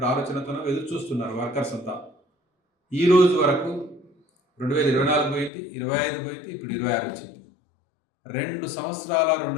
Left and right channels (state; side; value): drops out; right; at 5.5 s